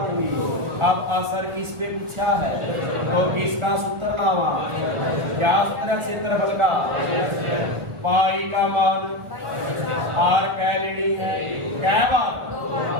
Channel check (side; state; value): left; late; 1.6 ms